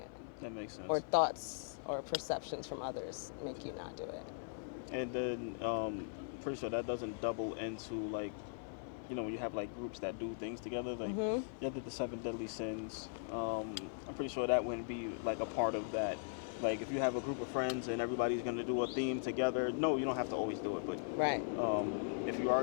That makes sense. Or thoughts or perceptions from others make you not do it. And then pretty sure that doesn't double into like, you know, when you have like groups that do things together, like you did the 7 deadly sins. I'm pretty sure that wouldn't be like a part of that. Like if you have a group of friends and everybody's gonna do a theme together, no, you don't have to always do it, but Right. if you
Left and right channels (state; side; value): silent; right; 51 dB below the other